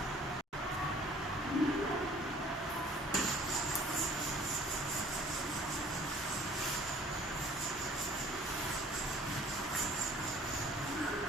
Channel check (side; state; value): both; normal; correlation 0.52